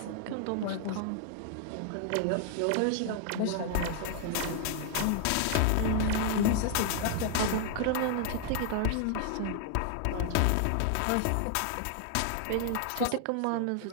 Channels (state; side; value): different; both; correlation 0.00